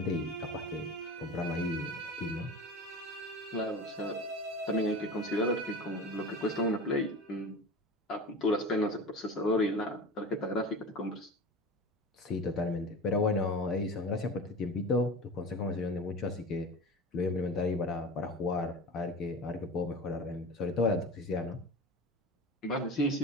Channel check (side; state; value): both; normal; correlation 0.32